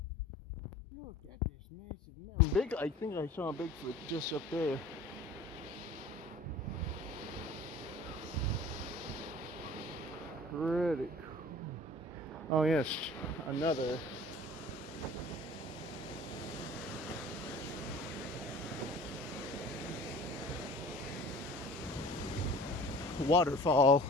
look at this massive mountain. Big, I think I saw a Bigfoot just up there. Pretty cool. Oh yes, another. Waterfall.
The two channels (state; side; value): normal; both; correlation 0.44